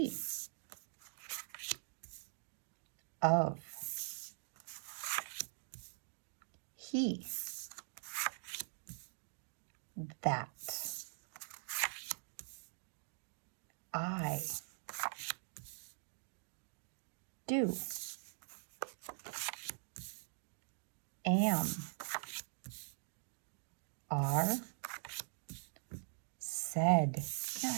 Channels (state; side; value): silent; left; digital silence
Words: Of. He. That. I. Do. Am. Are. Said.